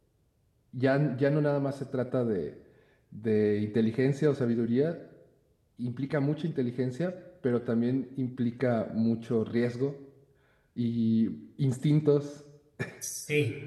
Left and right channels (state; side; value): identical; both; correlation 1.00